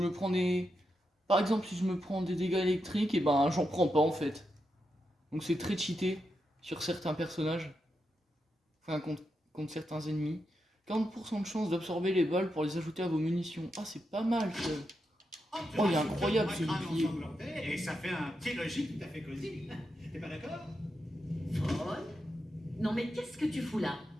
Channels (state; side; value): normal; both; correlation 0.85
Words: prends des... Par exemple, si je me prends des dégâts électriques, et ben j'en prends pas en fait. Donc c'est très cheaté sur certains personnages. Enfin, contre certains ennemis. 40% de chance d'absorber les balles pour les ajouter à vos munitions. Ah, c'est pas mal ça. Oh, il est incroyable ce bouclier. Et ça fait un petit logis tout à fait cosy. T'es pas d'accord? Paul? Non mais qu'est-ce que tu fous là?